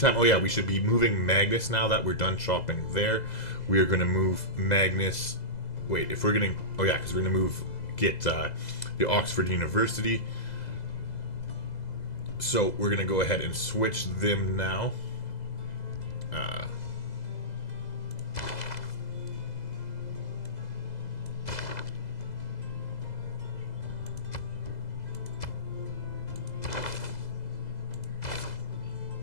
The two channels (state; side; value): late; right; 2.0 ms